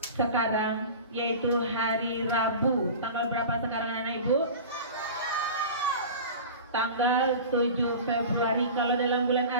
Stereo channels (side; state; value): both; inverted; correlation -0.35